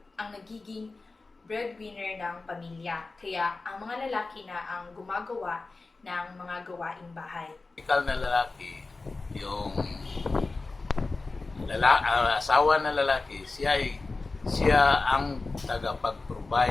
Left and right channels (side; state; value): right; quieter; 3.6 dB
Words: ang nagiging breadwinner ng pamilya. Kaya ang mga lalaki na ang gumagawa ng mga gawaing bahay. Ikaw na lalaki, yung asawa na lalaki, siya ang